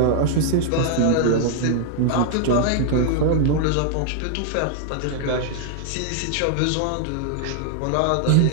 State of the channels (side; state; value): both; different; correlation 0.00